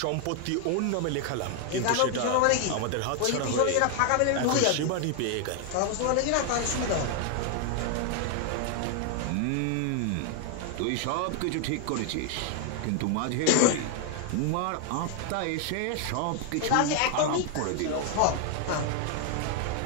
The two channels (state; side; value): different; both; correlation 0.00